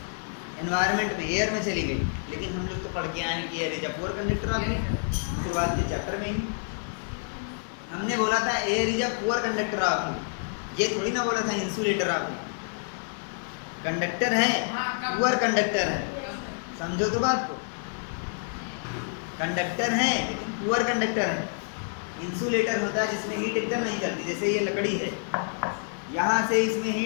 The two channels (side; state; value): right; silent; 59 dB below the other